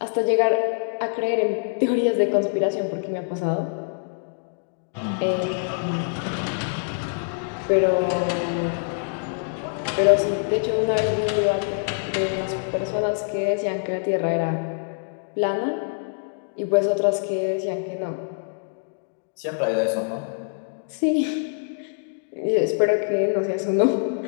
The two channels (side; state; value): right; silent; digital silence